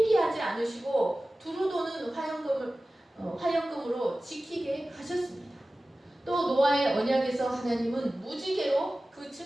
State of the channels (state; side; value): normal; both; correlation 0.96